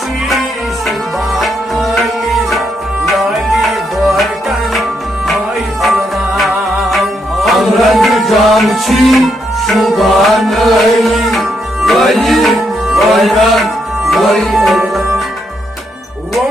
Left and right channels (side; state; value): both; normal; correlation 0.78